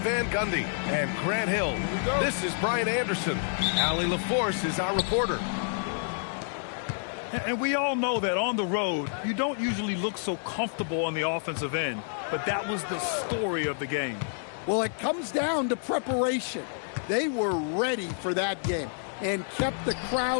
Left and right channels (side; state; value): right; silent; digital silence